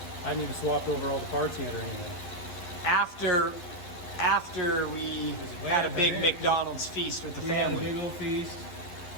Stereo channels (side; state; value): right; late; 11 ms